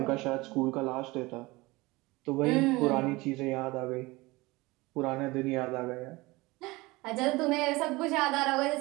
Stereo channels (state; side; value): quieter; left; 22.0 dB